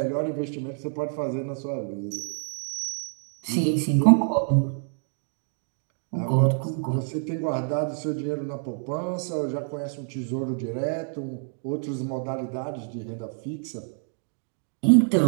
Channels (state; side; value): silent; left; 56 dB below the other